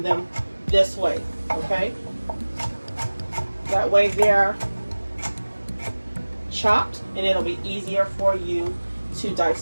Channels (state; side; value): inverted; both; correlation -1.00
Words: them this way. Okay, that way they're chopped and it'll be easier for you to dice